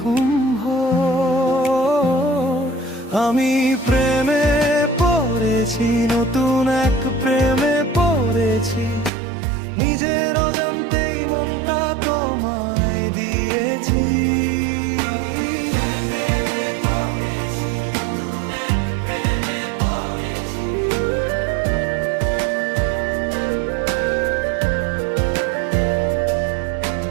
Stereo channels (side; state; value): left; drops out; at 9.1 s